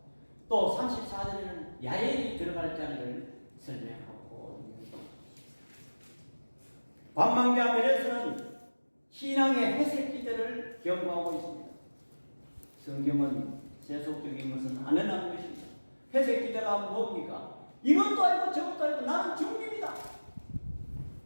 또 34절에는 야엘이 들어갈 자리를 설명하고 있습니다. 관망자 메레스는 신앙의 회색 기대를 경고하고 있습니다. 성경은 세속적인 것은 안 해나는 것입니다. 회색 기대가 뭡니까? 이것도 아니고 저것도 아니고 나는 중립이다.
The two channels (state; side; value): inverted; both; correlation -1.00